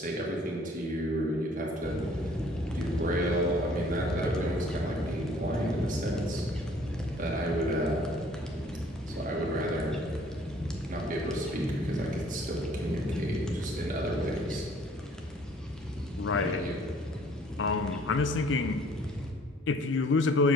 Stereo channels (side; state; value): both; normal; correlation 0.56